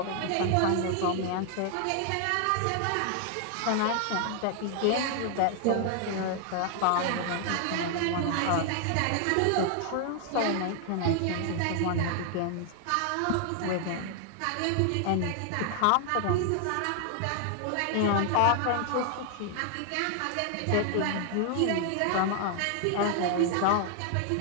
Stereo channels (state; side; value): different; both; correlation 0.00